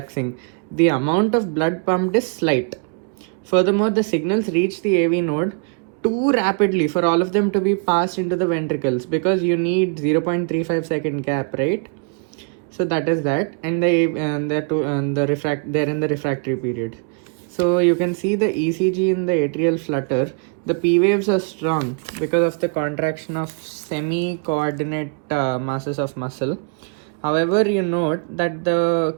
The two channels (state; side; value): quieter; left; 38.4 dB